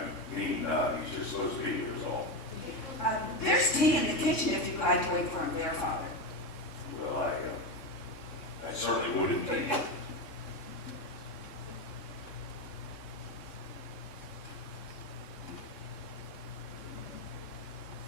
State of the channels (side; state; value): right; late; 3.7 ms